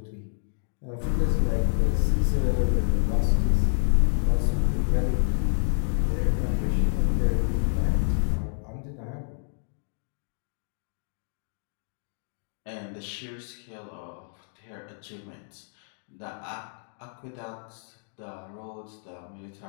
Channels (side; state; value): right; silent; digital silence